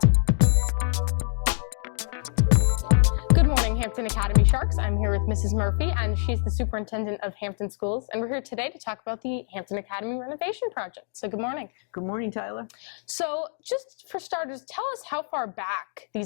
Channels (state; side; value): silent; right; digital silence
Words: Good morning, Hampton Academy Sharks. I'm here with Mrs. Murphy, and she's the superintendent of Hampton Schools, and we're here today to talk about the Hampton Academy renovation project. So good morning. Good morning, Tyler. So just for starters, tell us how far back